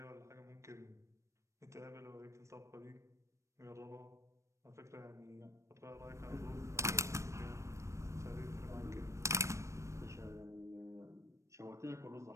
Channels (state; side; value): late; left; 0.14 ms